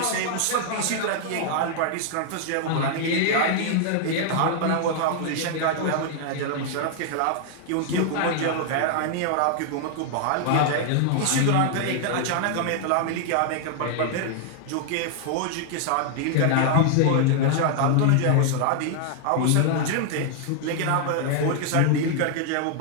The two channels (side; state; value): both; different; correlation 0.00